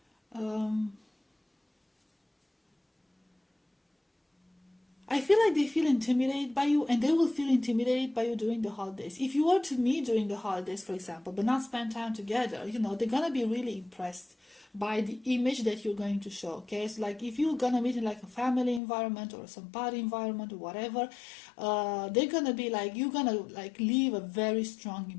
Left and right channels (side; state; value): right; drops out; at 18.8 s